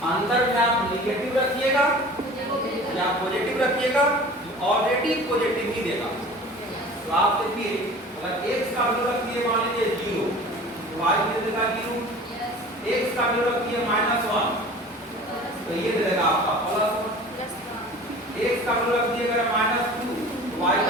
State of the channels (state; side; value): normal; both; correlation 0.41